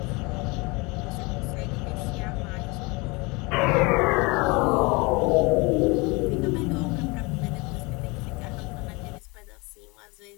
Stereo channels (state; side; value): quieter; right; 26.6 dB